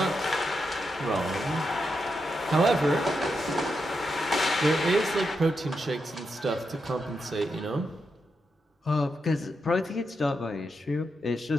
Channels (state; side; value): normal; both; correlation 0.85